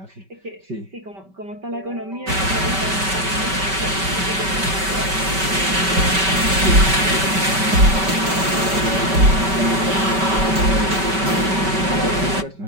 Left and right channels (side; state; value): left; late; 5.2 ms